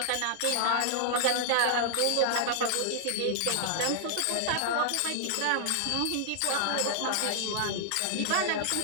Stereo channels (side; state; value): both; different; correlation -0.01